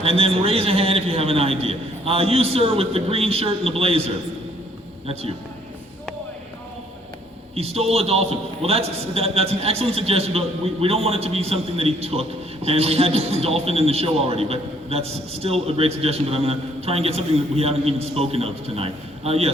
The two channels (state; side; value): normal; both; correlation 0.63